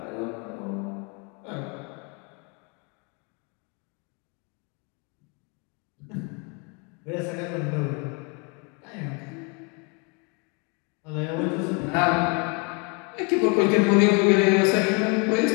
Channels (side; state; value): right; quieter; 33.3 dB